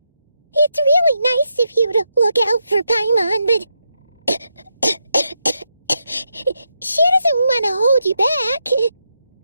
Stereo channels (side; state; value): both; inverted; correlation -0.83